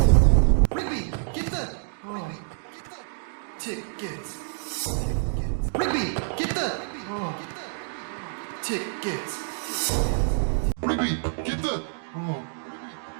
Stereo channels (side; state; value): left; silent; digital silence